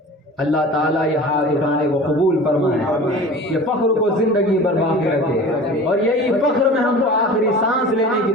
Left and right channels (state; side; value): normal; both; correlation 0.39